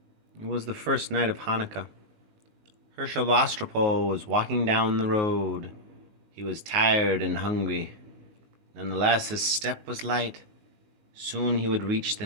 It was the first night of Hanukkah. Hershel was walking down the road. He was tired and hungry. Nonetheless, his step was light. Soon he would reach the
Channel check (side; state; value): left; late; 19 ms